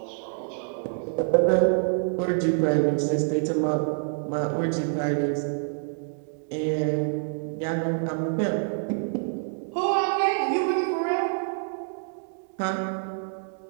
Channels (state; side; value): silent; left; digital silence